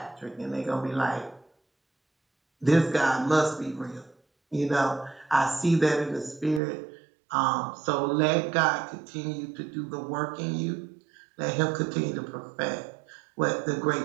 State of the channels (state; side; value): drops out; left; at 6.6 s